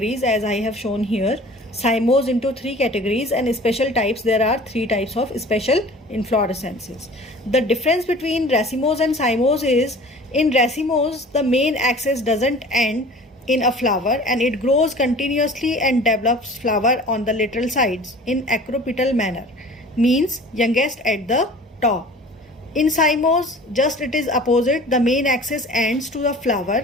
as I have shown here. Cymose into 3 categories, and special types, there are 3 types of special inflorescences. The difference between racemose and cymose is, in racemose the main axis doesn't end in a flower and it grows continuously and develops flower on the lateral sides in acropetal manner, means youngest at the top. In cymose, just it is opposite, the main axis ends to the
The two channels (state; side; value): normal; both; correlation 0.44